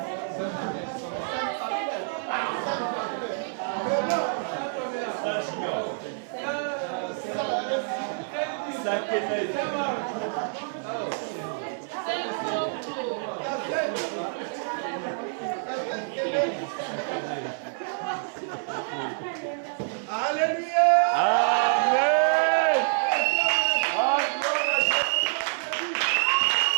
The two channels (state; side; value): silent; left; 57 dB below the other